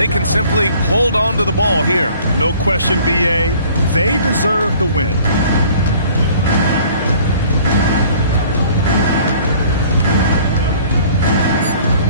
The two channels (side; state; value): both; inverted; correlation -0.52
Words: can simply hold on to the ball here. No question, B.A. They deserve the win.